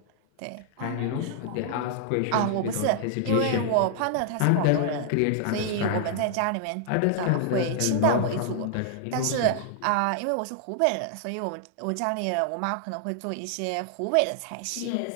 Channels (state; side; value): different; both; correlation 0.00